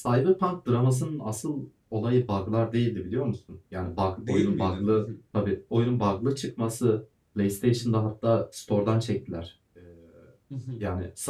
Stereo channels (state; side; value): identical; both; correlation 1.00